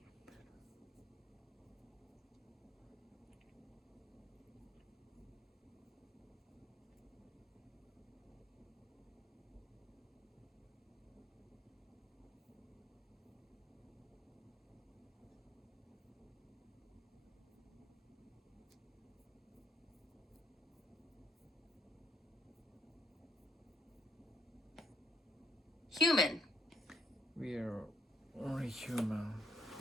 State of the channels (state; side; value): normal; both; correlation 0.72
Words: Human. We are only human.